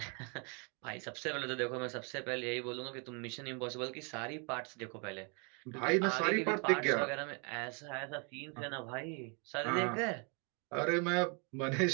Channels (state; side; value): quieter; left; 35.7 dB